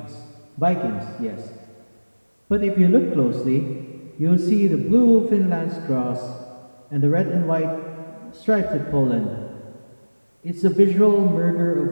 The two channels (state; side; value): inverted; both; correlation -1.00